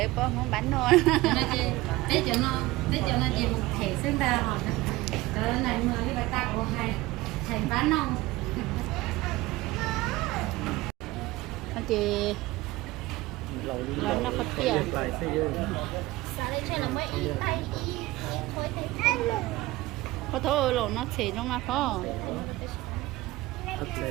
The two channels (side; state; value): left; quieter; 19.1 dB